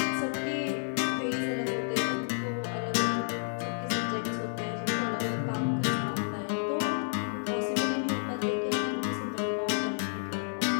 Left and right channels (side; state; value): right; silent; 57 dB below the other